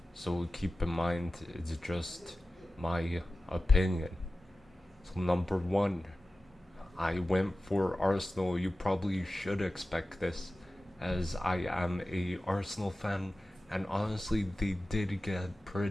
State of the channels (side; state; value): both; normal; correlation 0.95